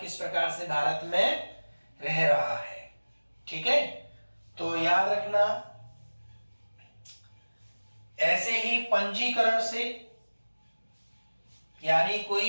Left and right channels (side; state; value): both; inverted; correlation -1.00